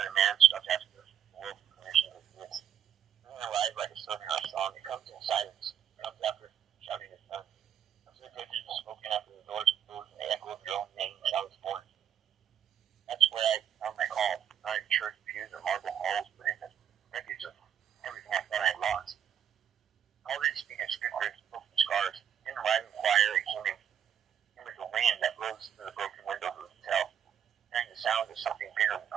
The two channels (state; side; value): quieter; left; 8.9 dB